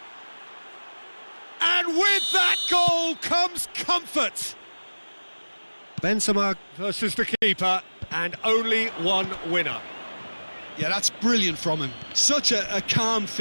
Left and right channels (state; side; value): inverted; both; correlation -1.00